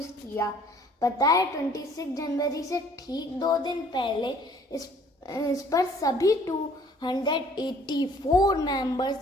किया। पता है, 26 जनवरी से ठीक 2 दिन पहले इस पर सभी 284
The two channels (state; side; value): normal; both; correlation 0.57